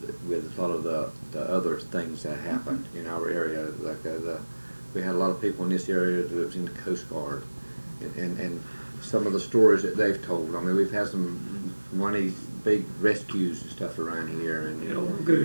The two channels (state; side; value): inverted; both; correlation -1.00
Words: a lot of the other things that happened in our area. Like we had a lot of people in this area that was in the Coast Guard, and some of the stories that they've told. I mean, we've had one of these big rescues and stuff around here, and It all